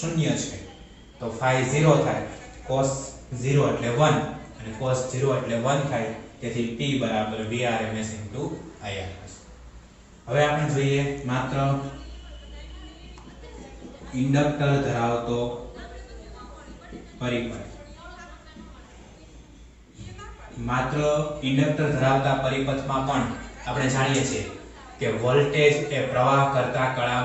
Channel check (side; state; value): both; identical; correlation 1.00